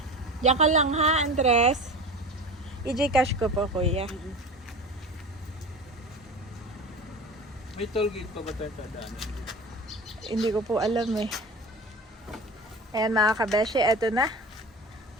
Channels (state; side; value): normal; both; correlation 0.33